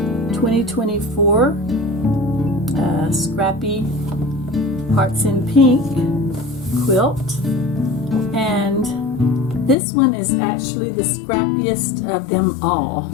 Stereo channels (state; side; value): drops out; right; at 9.8 s